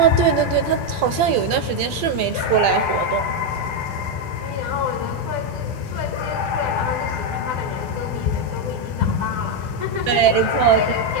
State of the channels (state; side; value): late; left; 12 ms